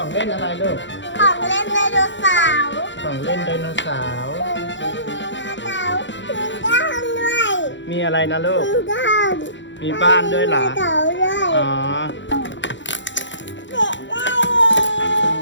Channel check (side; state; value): right; late; 0.54 ms